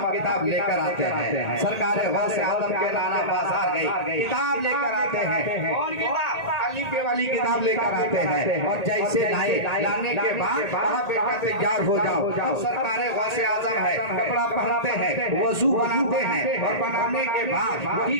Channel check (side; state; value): right; late; 1.8 ms